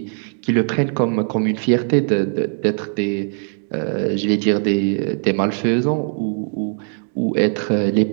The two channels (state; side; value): silent; left; 56 dB below the other